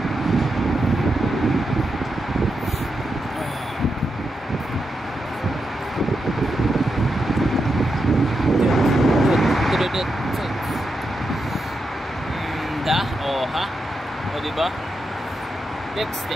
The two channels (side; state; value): both; normal; correlation 0.86